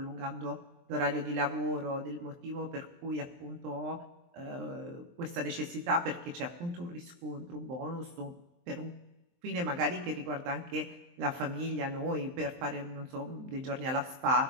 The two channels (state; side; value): late; left; 23 ms